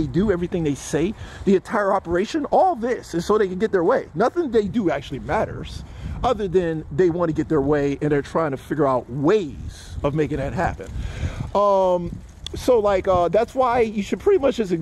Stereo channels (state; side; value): identical; both; correlation 1.00